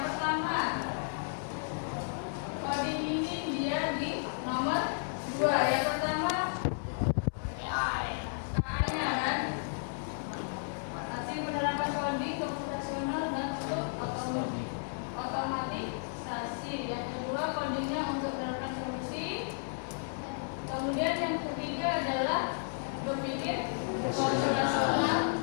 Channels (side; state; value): right; silent; 56 dB below the other